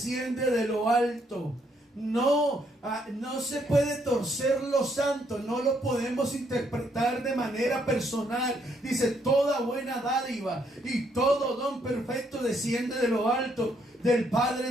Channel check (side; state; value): both; normal; correlation 0.72